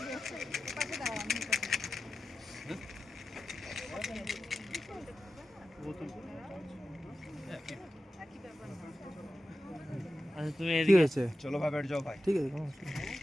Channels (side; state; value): both; normal; correlation 0.93